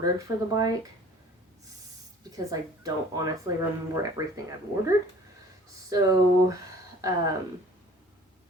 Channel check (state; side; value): normal; both; correlation 0.50